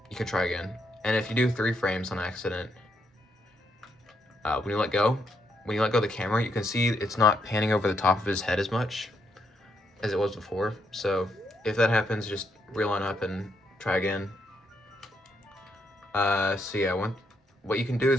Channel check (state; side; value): normal; both; correlation 0.77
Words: you can try again. And if you do 3 frames on accident, when you let go of the camera, you can see it's not panning over the top of his head as much as it was before. So if that happens, just reline up and try again. So yeah, what you can do